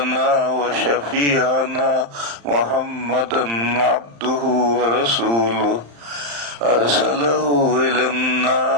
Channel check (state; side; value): late; left; 35 ms